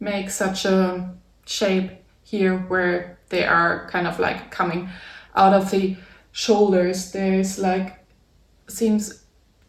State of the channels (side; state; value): both; identical; correlation 1.00